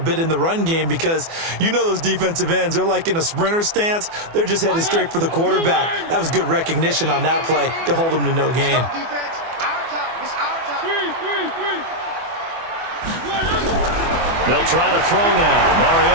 in the run game because you know those defensive ends, they're like in a sprinter stance. They're just headed straight for the quarterback. That was good recognition on that play to hold them to no gain. They'll try to throw now.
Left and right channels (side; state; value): left; late; 24 ms